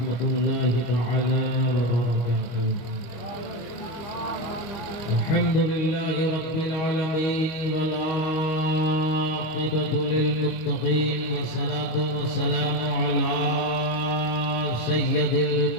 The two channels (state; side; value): late; right; 25 ms